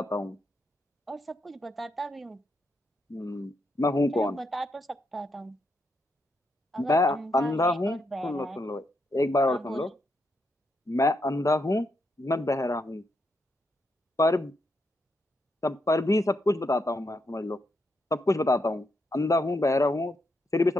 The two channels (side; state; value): both; normal; correlation 0.80